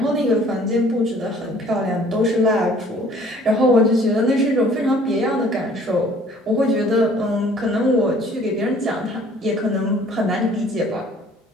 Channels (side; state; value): both; normal; correlation 0.55